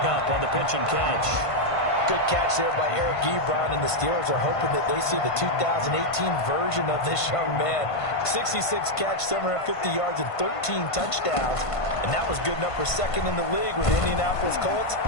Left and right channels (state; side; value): late; right; 1.5 ms